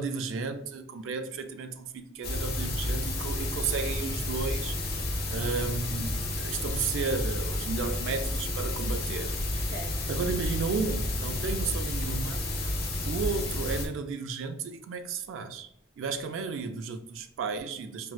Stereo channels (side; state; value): both; normal; correlation 0.49